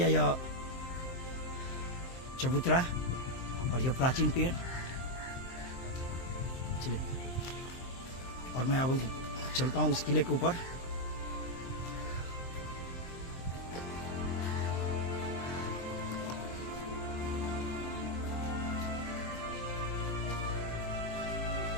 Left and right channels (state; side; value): late; right; 23 ms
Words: यह चबूतरा और यह प्राचीन पेड़। चलिए, और मैं अब चलता हूँ उस किले के ऊपर।